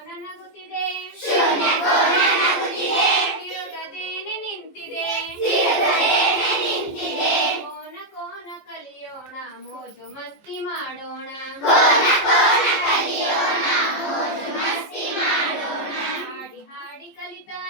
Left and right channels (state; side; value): late; right; 14 ms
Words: ನಗುತ್ತಿದೆ, ಶೂನ್ಯ ಕೋನ ನಗುತ್ತಿದೆ, ತಿರುಗದೇನೆ ನಿಂತಿದೆ, ತಿರುಗದೇನೆ ನಿಂತಿದೆ. ಕೋನ ಕೋನ ಕಲಿಯೋಣ, ಮೋಜು ಮಸ್ತಿ ಮಾಡೋಣ. ಕೋನ ಕೋನ ಕಲಿಯೋಣ, ಮೋಜು ಮಸ್ತಿ ಮಾಡೋಣ. ಹಾಡಿ ಹಾಡಿ